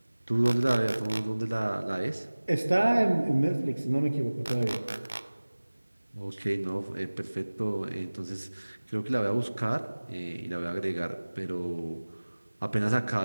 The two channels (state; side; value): inverted; both; correlation -1.00